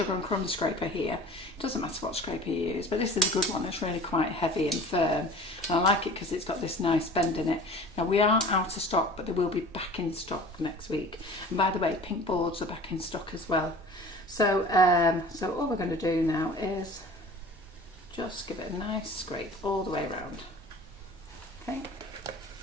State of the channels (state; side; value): normal; both; correlation 0.43